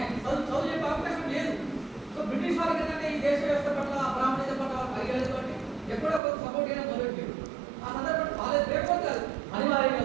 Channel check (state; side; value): drops out; left; at 6.2 s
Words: చదువు చెప్పే అవకాశం లేదు. సో బ్రిటిష్ వాళ్ళకి ఏంటంటే ఈ దేశ వ్యవస్థ పట్ల బ్రాహ్మణ్యత పట్ల పరిగణతో ఎప్పుడో ఒక సపోర్ట్ అయినా మొదలెట్టారు. ఆ సందర్భంలో వాళ్ళే లేకపోతే కాదు అనివార్యంగా